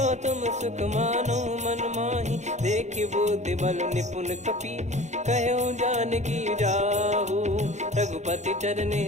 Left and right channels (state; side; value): late; left; 0.34 ms